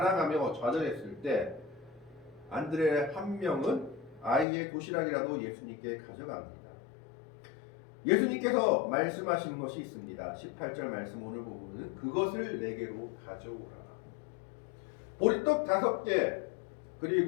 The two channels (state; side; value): drops out; right; at 4.5 s